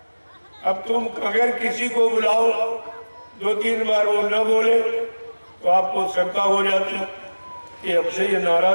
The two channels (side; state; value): both; inverted; correlation -1.00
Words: अब तुम अगर किसी को बुलाओ 2-3 बार वो न बोले तो आपको शंका हो जाती कि हमसे ये